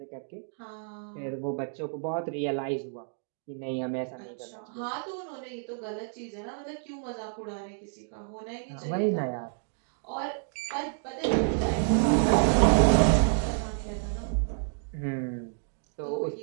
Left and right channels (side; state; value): left; silent; digital silence